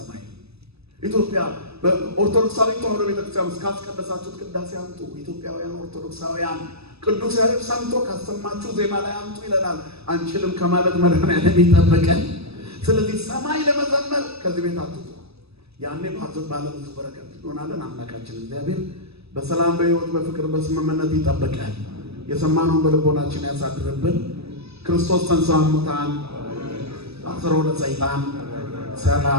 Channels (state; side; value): late; left; 0.78 ms